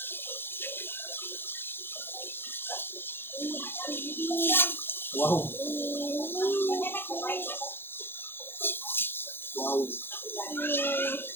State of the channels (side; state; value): right; late; 0.10 ms